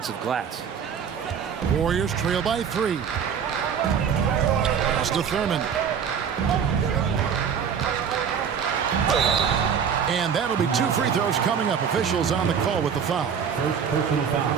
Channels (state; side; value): quieter; left; 7.3 dB